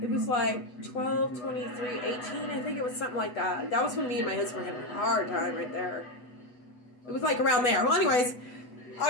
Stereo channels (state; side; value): late; right; 8.1 ms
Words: was like 12, 23, 18. I think it was something like that. That was when me and my husband were having a hard time right there. It was like around there. Well, anyways,